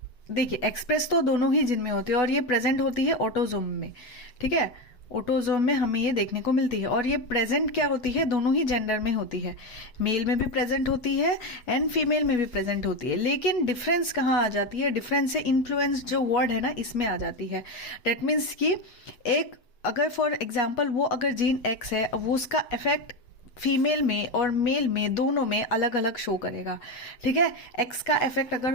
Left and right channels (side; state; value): right; late; 8.2 ms